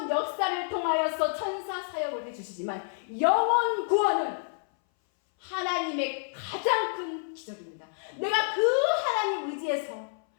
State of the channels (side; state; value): right; silent; 59 dB below the other